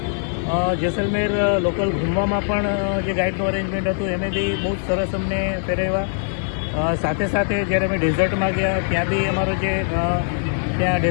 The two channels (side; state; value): right; silent; digital silence